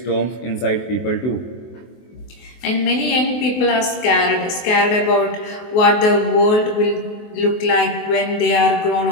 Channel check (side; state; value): right; late; 24 ms